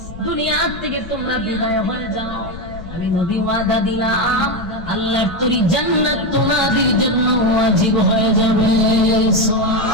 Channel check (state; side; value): noise; left; rumble, 14 dB below the sound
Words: দুনিয়া থেকে তোমরা বিদায় হয়ে যাও, আমি নবী ওয়াদা দিলাম আল্লাহর তৈরি জান্নাত তোমাদের জন্য ওয়াজিব হয়ে যাবে।